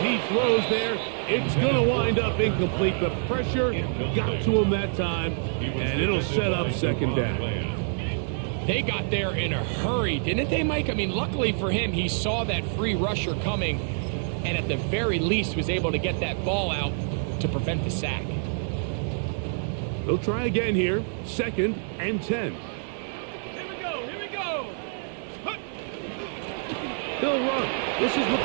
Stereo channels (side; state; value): left; silent; digital silence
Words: throws there. It's going to wind up incomplete. The pressure got to him that time, and it'll set up 2nd down. They got there in a hurry, didn't they, Mike? I mean, luckily for him, he saw that free rusher coming, and at the very least was able to get that ball out to prevent the sack. They'll try again here. 2nd and 10. Here we go. They'll run. This is